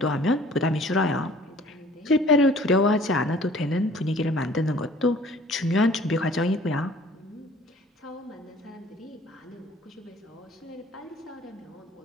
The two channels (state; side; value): normal; both; correlation 0.53